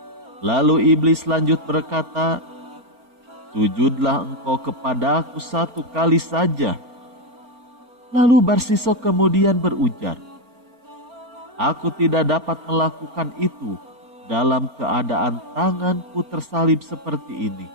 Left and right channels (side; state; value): left; late; 4.4 ms